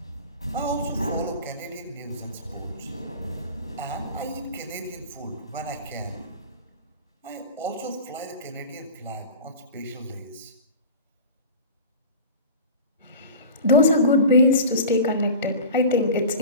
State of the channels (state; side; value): inverted; both; correlation -0.35